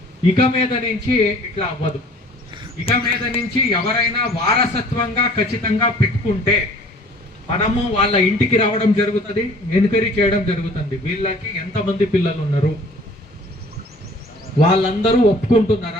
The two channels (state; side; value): normal; both; correlation 0.51